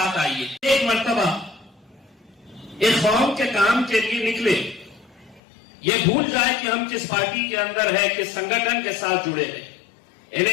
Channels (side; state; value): right; drops out; at 5.4 s